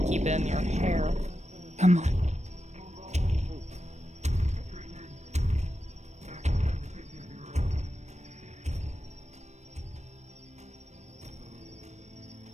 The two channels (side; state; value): left; late; 0.33 ms